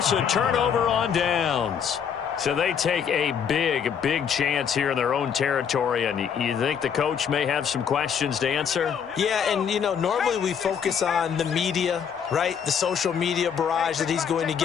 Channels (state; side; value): quieter; right; 7.5 dB